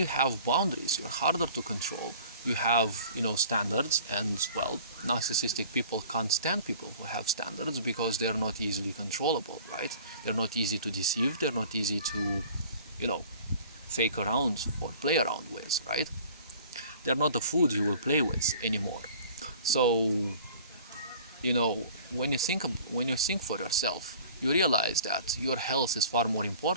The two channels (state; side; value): inverted; both; correlation -0.47